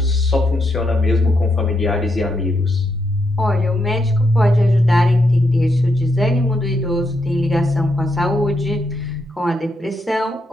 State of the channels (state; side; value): normal; both; correlation 0.81